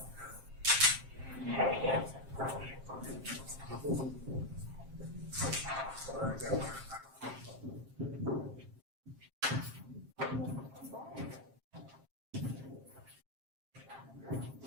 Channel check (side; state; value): left; late; 7.5 ms